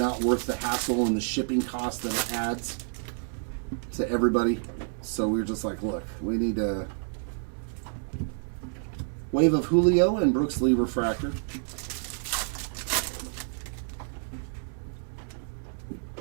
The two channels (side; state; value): left; silent; 59 dB below the other